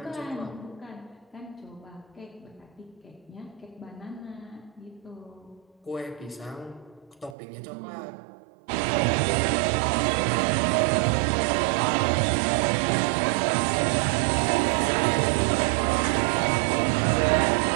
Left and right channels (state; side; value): drops out; left; at 7.4 s